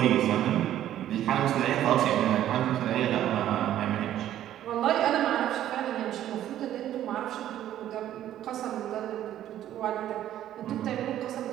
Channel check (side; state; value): left; quieter; 12.0 dB